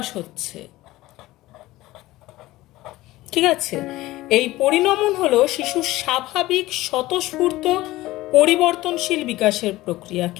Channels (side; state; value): right; quieter; 17.7 dB